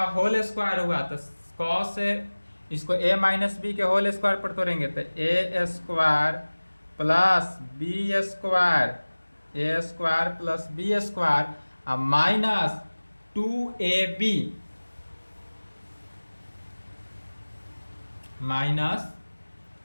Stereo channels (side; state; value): both; inverted; correlation -1.00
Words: होल स्क्वायर हुआ तो कॉस इसको a माइनस बी के होल स्क्वायर पर तोड़ेंगे तो a square plus B square, A square plus B square, अब माइनस 2ab माइनस